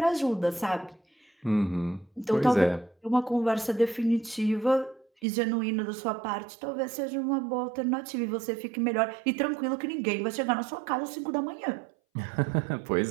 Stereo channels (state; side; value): drops out; left; at 5.1 s